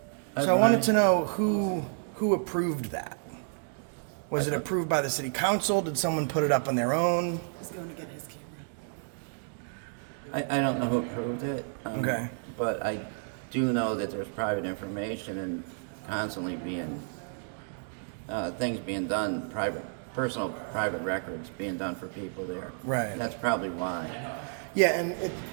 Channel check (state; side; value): silent; left; digital silence